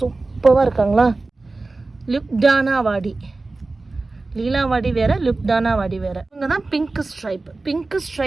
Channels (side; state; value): left; quieter; 3.4 dB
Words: இருக்காங்களா. லுக்டானா வாடி, லீலாவாடி வேறு, லுக்டானா வாடி வேறு. இவங்க தான் பிங்க் ஸ்ட்ரைப். பிங்க்